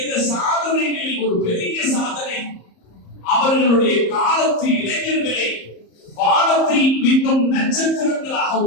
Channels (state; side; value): late; right; 34 ms